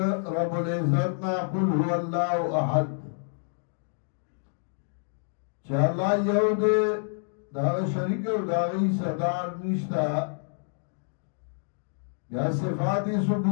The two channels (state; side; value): silent; right; digital silence